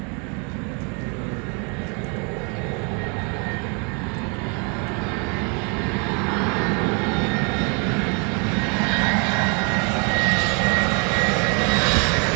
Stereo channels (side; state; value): left; quieter; 34.6 dB